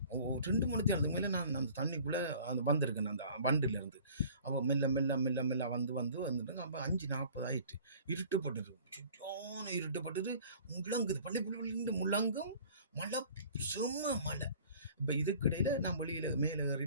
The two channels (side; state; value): both; inverted; correlation -0.48